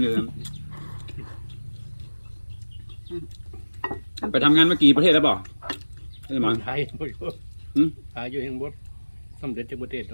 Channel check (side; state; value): both; inverted; correlation -1.00